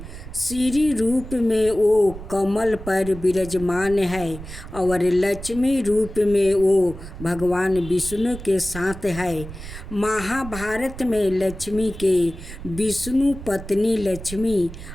श्री रूप में वो कमल पर विराजमान है और लक्ष्मी रूप में वो भगवान विष्णु के साथ है। महाभारत में लक्ष्मी के विष्णु पत्नी लक्ष्मी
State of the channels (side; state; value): right; noise; rumble, 12 dB below the sound